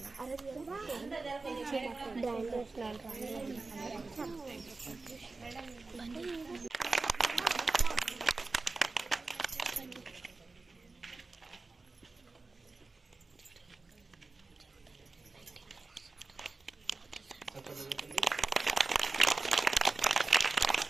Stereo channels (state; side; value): quieter; left; 3.7 dB